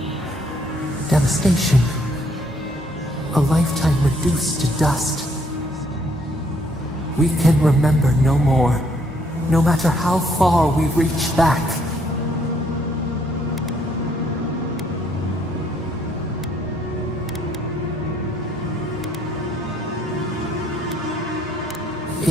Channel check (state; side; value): normal; both; correlation 0.67